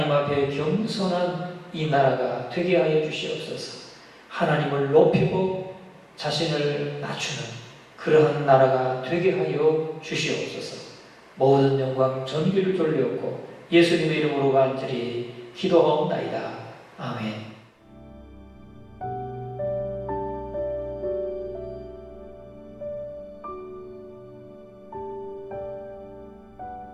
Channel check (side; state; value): both; identical; correlation 1.00